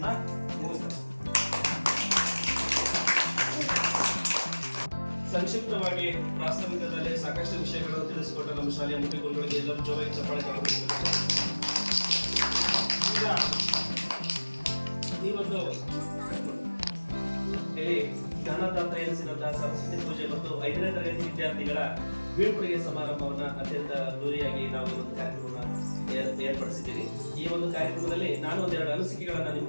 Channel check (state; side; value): inverted; both; correlation -1.00